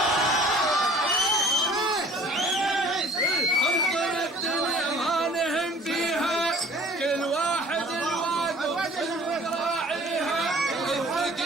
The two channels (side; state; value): both; normal; correlation 0.51